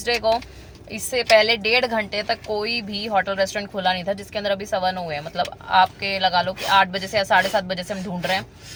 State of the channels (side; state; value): both; identical; correlation 1.00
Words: को इससे पहले 1.5 घंटे तक कोई भी होटल रेस्टोरेंट खुला नहीं था, जिसके अंदर अभी 9:15 हुए हैं। मतलब आपके लगा लो कि 8 बजे से या 7:30 बजे से हम ढूंढ रहे हैं,